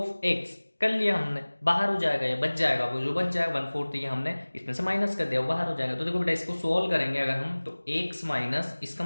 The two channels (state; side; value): inverted; both; correlation -1.00